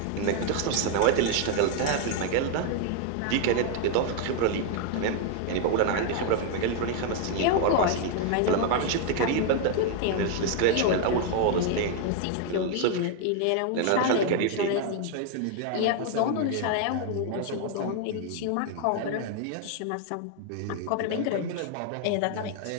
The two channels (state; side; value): different; both; correlation 0.00